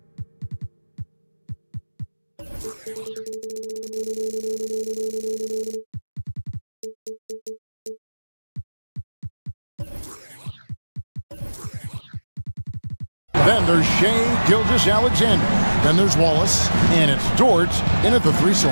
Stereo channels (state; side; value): inverted; both; correlation -1.00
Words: Then there's Shea Gilgeous-Alexander. Then there's Wallace. And it's Dort in at the 3